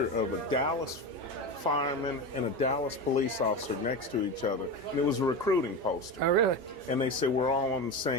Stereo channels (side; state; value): both; normal; correlation 0.22